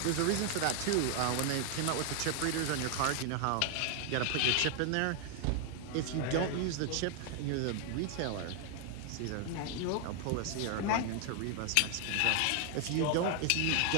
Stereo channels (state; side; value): different; both; correlation 0.00